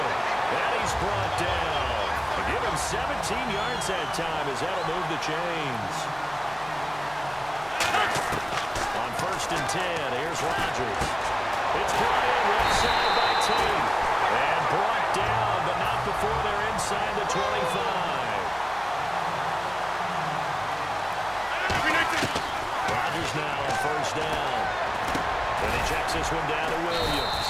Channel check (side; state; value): right; noise; hum, 21 dB below the sound